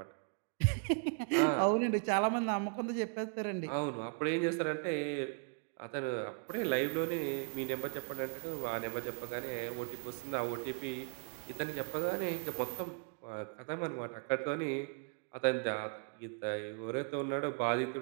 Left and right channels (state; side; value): quieter; left; 38.7 dB